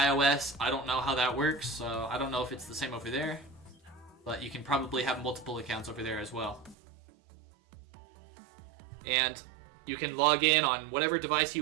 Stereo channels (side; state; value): left; drops out; at 6.8 s